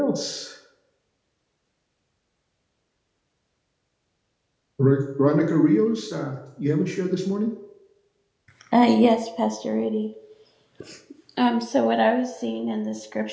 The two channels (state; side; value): identical; both; correlation 1.00